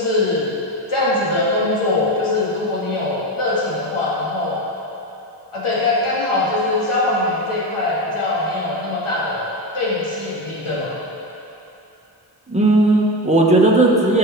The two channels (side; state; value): both; normal; correlation 0.17